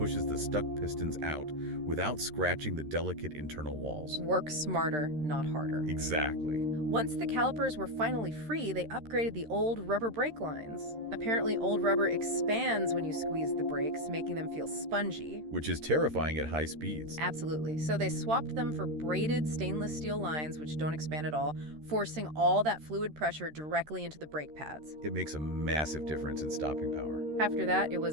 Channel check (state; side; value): late; left; 13 ms